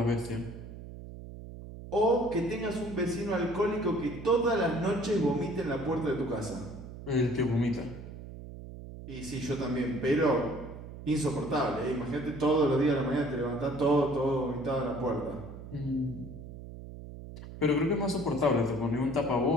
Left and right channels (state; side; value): noise; right; hum, 12 dB below the sound